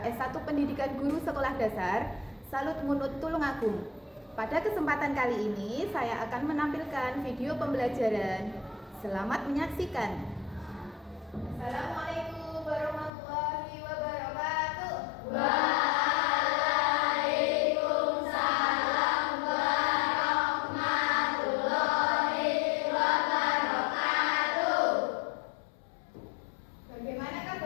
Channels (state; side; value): drops out; right; at 13.1 s